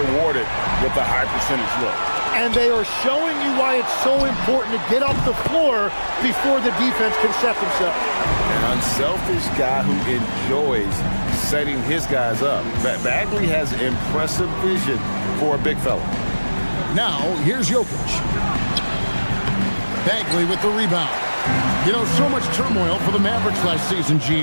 with a high percentage look. And they are showing you why it's so important to get off the floor before the defense can set themselves. An unselfish guy who enjoys setting his guys up. Bagley has impressive vision for a big fella. Now, here's Jokic. Bagley with the rebound. You know, so much turmoil for the Mavericks last season,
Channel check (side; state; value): both; inverted; correlation -1.00